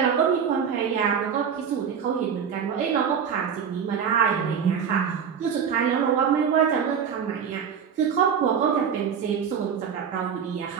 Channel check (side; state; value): left; quieter; 7.3 dB